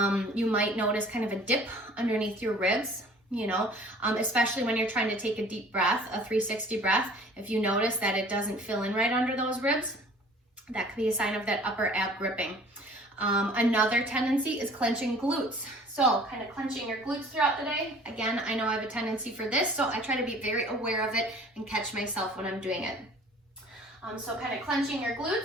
You might notice kind of a dip underneath your ribs, especially when you're trying to take a deep breath, a 360 breath. If you notice that it doesn't fill in right under those ribs, that could be a sign of that upper ab gripping. Another tendency is clenching glutes. So kind of clenching your glutes throughout the day. Again, I know I have a tendency for this, so I try to be very aware of it and catch myself when I'm doing it. So kind of clenching your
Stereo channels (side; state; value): both; normal; correlation 0.50